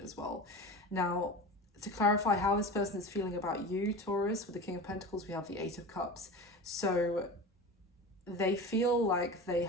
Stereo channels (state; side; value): normal; both; correlation 0.31